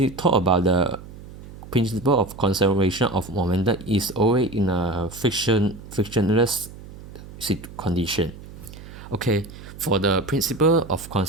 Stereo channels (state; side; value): noise; right; hum, 16 dB below the sound